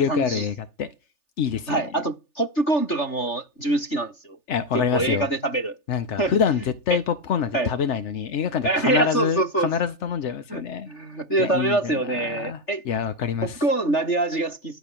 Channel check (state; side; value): late; right; 3.4 ms